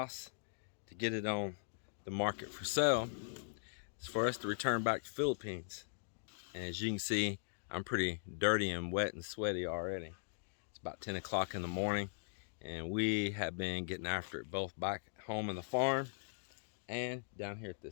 to get it on the market for sale. It's for us to return back to Philippines. And as you can see, I'm pretty dirty and wet and sweaty already. It's about 10 o'clock in the morning, and we have been getting after it both back home in the farm and down here at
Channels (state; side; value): silent; right; digital silence